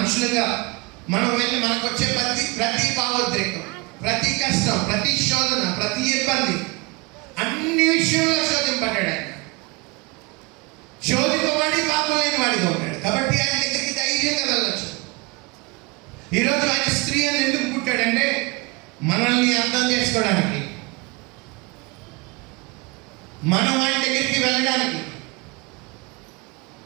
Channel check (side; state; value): left; quieter; 26.7 dB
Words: మనం వెళ్ళి మనకు వచ్చే ప్రతి భావోద్రేకం, ప్రతి కష్టం, ప్రతి శోధన, ప్రతి ఇబ్బంది, అన్ని విషయంలో శోధింపడ్డాడు ఆయన. శోధింపబడి పాపం లేని వాడిగా ఉన్నాడు కాబట్టి ఆయన దగ్గరికి ధైర్యంగా వెళ్ళచ్చు. ఈరోజు ఆయన స్త్రీ అని ఎందుకు పుట్టాడంటే మనల్ని అర్థం చేసుకోవడానికి, మనం ఆయన దగ్గరికి వెళ్ళడానికి.